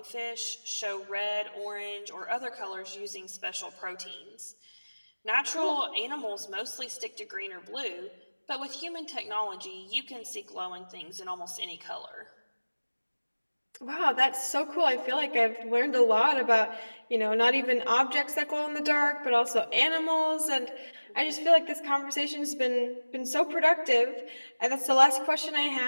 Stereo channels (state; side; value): inverted; both; correlation -1.00